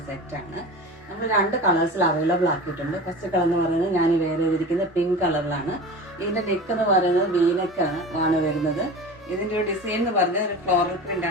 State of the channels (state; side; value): normal; both; correlation 0.33